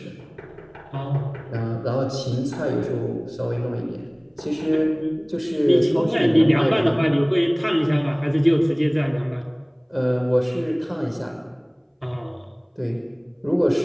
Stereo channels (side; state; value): both; identical; correlation 1.00